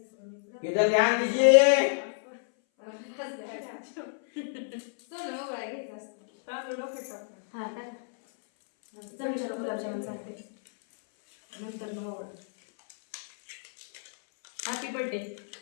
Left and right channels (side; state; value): right; silent; 58 dB below the other